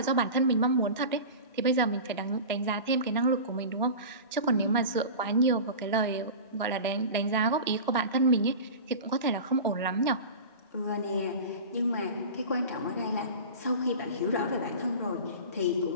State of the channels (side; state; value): both; inverted; correlation -0.32